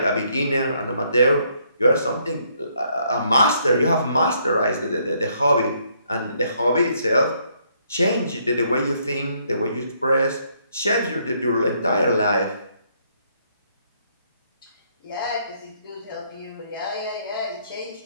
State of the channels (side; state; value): both; inverted; correlation -0.70